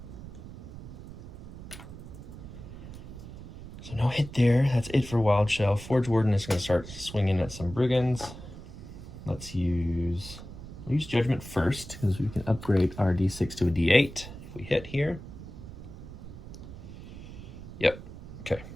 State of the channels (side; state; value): right; noise; rumble, 13 dB below the sound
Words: So no hit there. That's it for Wild Shell. Forge Warden is going to start swinging at some Brigands. We'll use Judgment first because we can upgrade our D6 to a D8 if we hit here. Yep. Okay.